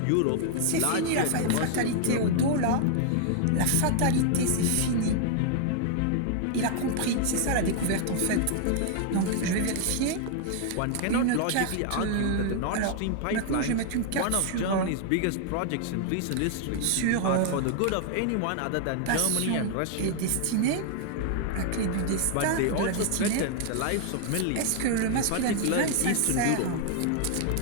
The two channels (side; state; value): both; different; correlation 0.00